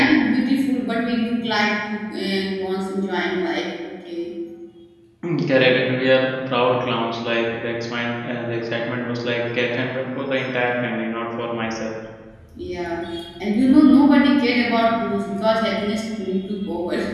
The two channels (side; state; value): both; identical; correlation 1.00